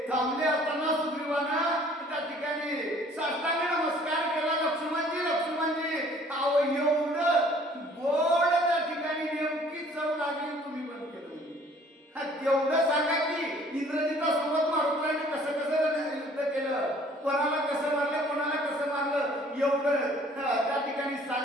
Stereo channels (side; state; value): both; normal; correlation 0.55